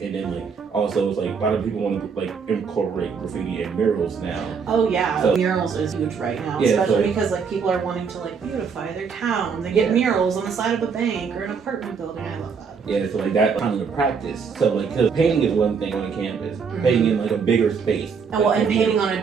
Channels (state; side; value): quieter; left; 5.9 dB